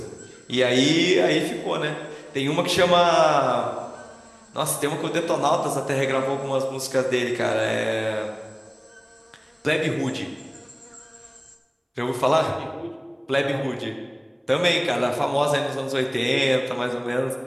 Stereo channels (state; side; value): identical; both; correlation 1.00